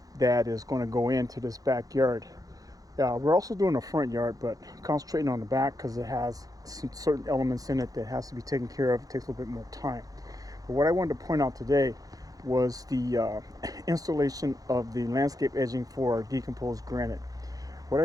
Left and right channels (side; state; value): left; late; 0.17 ms